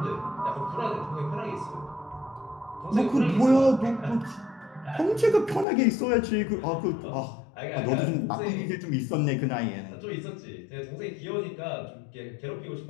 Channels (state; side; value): drops out; right; at 5.7 s